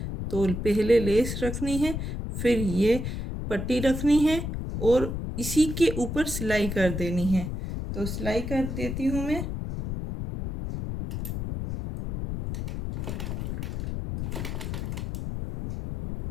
तो पहले लेस रखनी है, फिर ये पट्टी रखनी है और इसी के ऊपर सिलाई कर देनी है। तो सिलाई कर देती हूँ मैं।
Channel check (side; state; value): left; noise; rumble, 4 dB below the sound